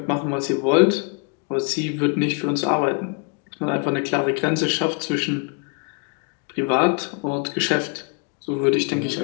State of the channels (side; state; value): right; quieter; 36.7 dB